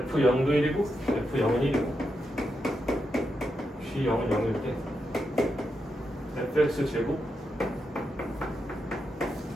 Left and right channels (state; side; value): normal; both; correlation 0.85